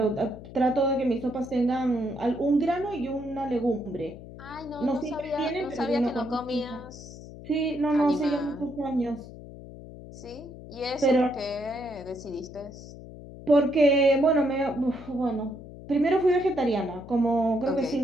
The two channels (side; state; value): left; noise; hum, 15 dB below the sound